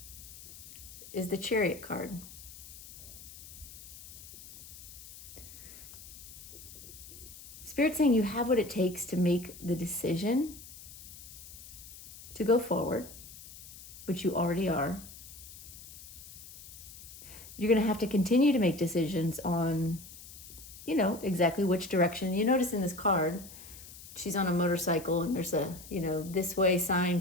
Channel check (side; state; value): left; noise; hiss, 16 dB below the sound